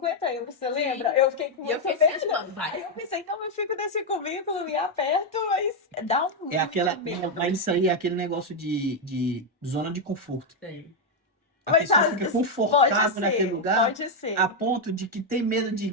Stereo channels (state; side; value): normal; both; correlation 0.02